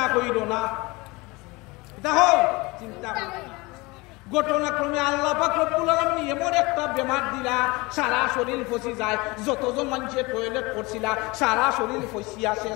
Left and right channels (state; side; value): quieter; right; 24.1 dB